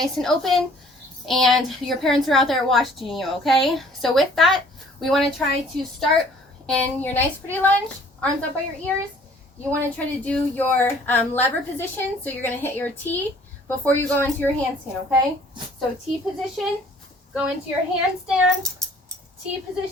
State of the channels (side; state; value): both; normal; correlation 0.55